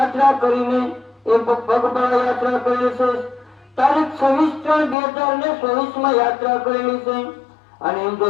કરીને એ પગપાળા યાત્રા કરેલી છે. તારીખ 26/3/2024 માં યાત્રા કરેલી છે. અને એમ જો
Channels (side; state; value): right; drops out; at 5.0 s